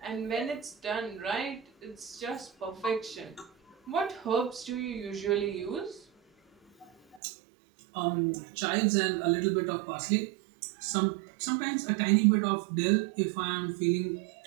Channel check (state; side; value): drops out; left; at 7.2 s